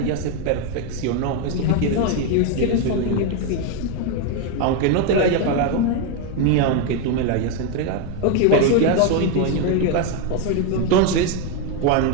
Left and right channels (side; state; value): both; different; correlation 0.02